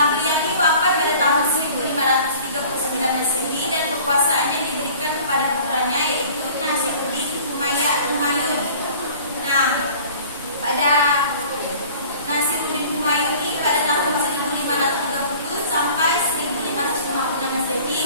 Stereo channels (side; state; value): both; inverted; correlation -0.47